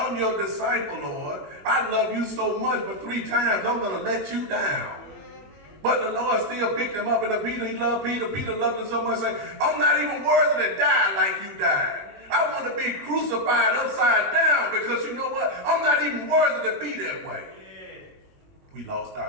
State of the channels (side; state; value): left; late; 21 ms